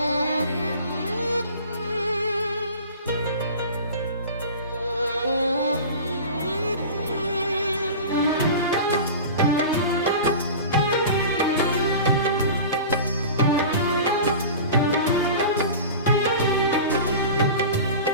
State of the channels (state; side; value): inverted; both; correlation -0.35